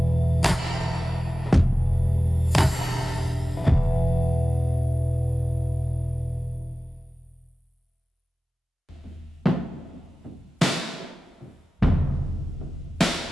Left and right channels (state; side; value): normal; both; correlation 0.96